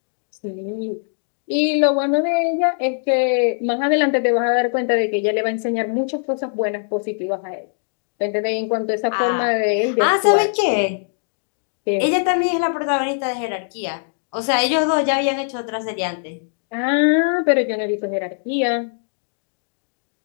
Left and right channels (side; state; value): right; silent; 65 dB below the other